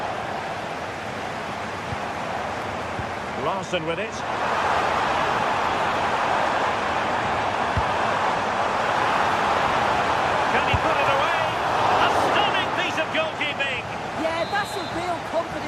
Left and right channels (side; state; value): both; identical; correlation 1.00